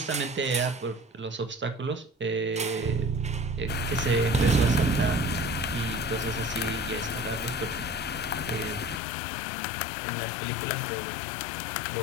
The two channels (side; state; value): right; drops out; at 9.0 s